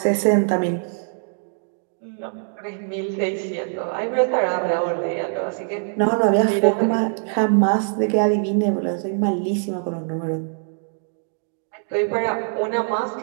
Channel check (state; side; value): silent; left; digital silence